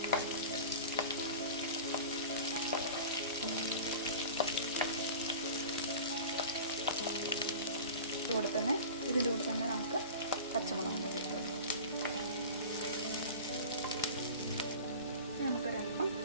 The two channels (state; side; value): inverted; both; correlation -0.36